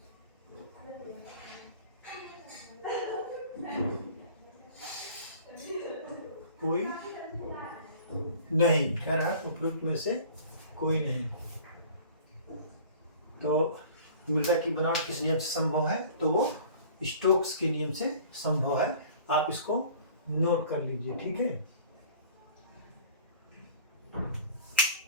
कोई नहीं, कह रहा है उपयुक्त में से कोई नहीं। तो मृदा की बनावट किस नियम से संभव है? तो वो स्टोक्स के नियम से संभव है। आप इसको नोट कर लीजिए, ठीक है।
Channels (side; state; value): both; inverted; correlation -0.47